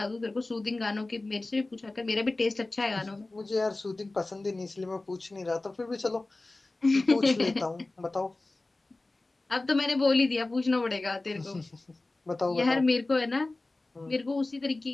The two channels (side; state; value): right; quieter; 3.0 dB